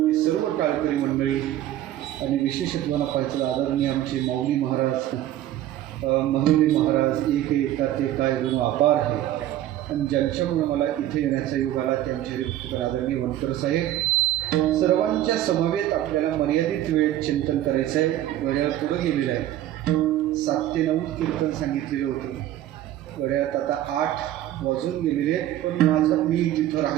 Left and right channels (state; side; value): quieter; left; 13.0 dB